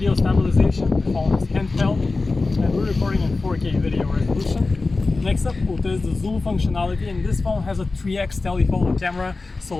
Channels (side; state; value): right; quieter; 3.6 dB